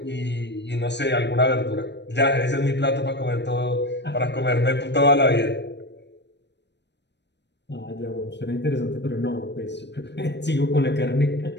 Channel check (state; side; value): late; right; 0.51 ms